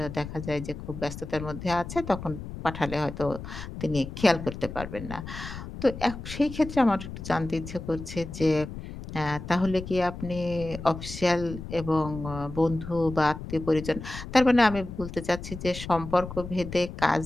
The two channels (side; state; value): left; noise; rumble, 10 dB below the sound